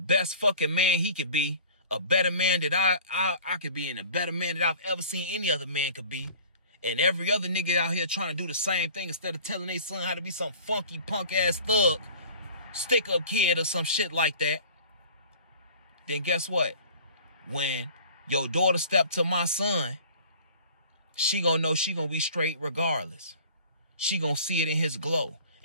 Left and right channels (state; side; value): inverted; both; correlation -0.44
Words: fucking man he could be, a better man that I could be, and a better man that I've ever seen any other man could be, and every other nigga out here trying to do the same thing instead of telling their son how to be some funky punk ass thug, stick up kid or some shit like that, then guess what? When your daughter step to my son, she gonna know she gonna be straight regardless. She gonna see it in his glow,